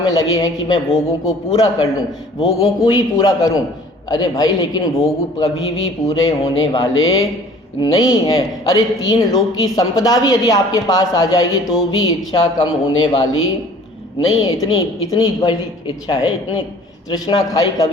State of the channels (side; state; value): both; normal; correlation 0.50